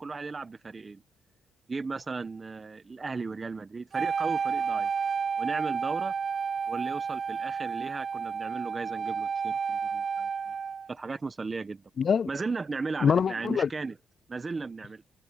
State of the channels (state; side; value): normal; both; correlation 0.84